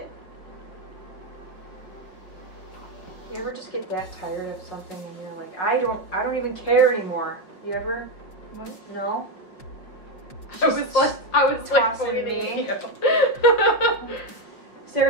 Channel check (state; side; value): late; right; 5.5 ms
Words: You ever just get that tired of something and you're like, I don't even care anymore. You ever? What? No? I was like tossing me.